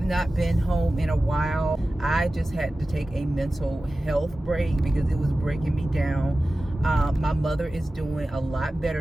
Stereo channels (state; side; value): normal; both; correlation 0.95